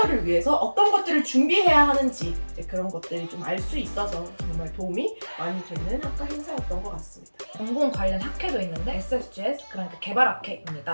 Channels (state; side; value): inverted; both; correlation -1.00